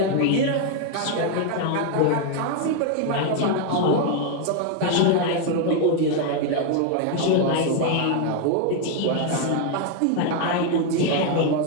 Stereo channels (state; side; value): different; both; correlation 0.01